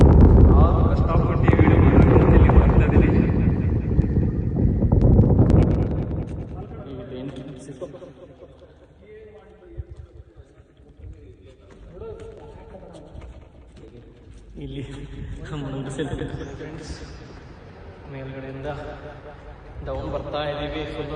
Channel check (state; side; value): identical; both; correlation 1.00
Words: ಕಷ್ಟಪಟ್ಟು ಈ ವಿಡಿಯೋ ಮಾಡೋಕ್ಕೆ ಇಲ್ಲಿ ಮಾಡ್ತಾ ಇದ್ದೀನಿ. ಇಲ್ಲಿ ಫ್ರೆಂಡ್ಸ್ ಮೇಲ್ಗಡೆಯಿಂದ ಡೌನ್ ಬರ್ತಾ ಇದ್ದೀವಿ. ಫುಲ್ಲು